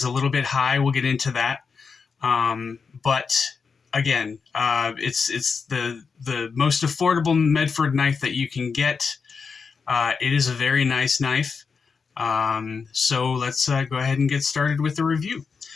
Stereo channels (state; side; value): quieter; right; 5.4 dB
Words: a little bit high. We'll get into that. But again, it's the most affordable Medford knife that you can get. It is a very nice knife. So let's go ahead and get started with the review.